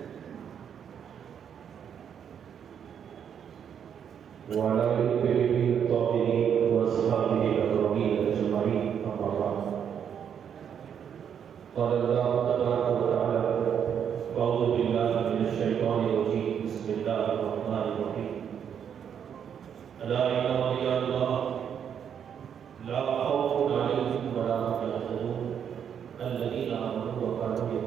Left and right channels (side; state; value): left; quieter; 8.2 dB